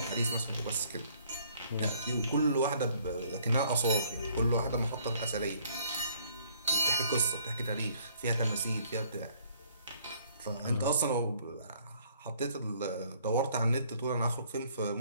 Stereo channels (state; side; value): inverted; both; correlation -0.62